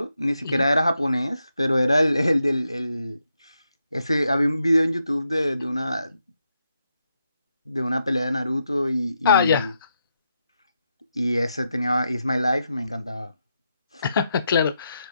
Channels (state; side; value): inverted; both; correlation -0.84